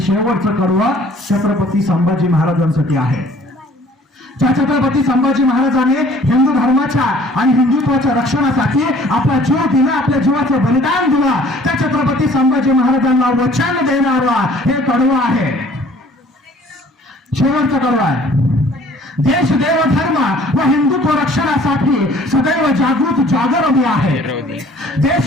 कडवं छत्रपती संभाजी महाराजांसाठी आहे. ज्या छत्रपती संभाजी महाराजांनी हिंदू धर्माच्या आणि हिंदुत्वाच्या रक्षणासाठी आपला जीव दिला, आपल्या जीवाचं बलिदान दिलं, त्या छत्रपती संभाजी महाराजांना वचन देणारा हे कडवं आहे. शेवटचं कडवं आहे. देश देव धर्म व हिंदुत्व रक्षणासाठी सदैव जागृत जागर मी आहे. देश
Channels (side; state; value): both; normal; correlation 0.54